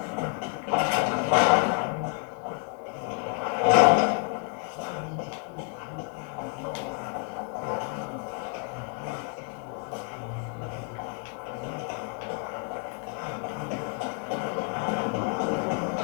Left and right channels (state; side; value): quieter; right; 36.6 dB